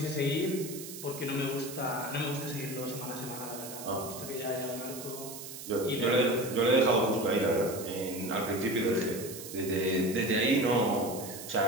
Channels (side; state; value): right; noise; hiss, 11 dB below the sound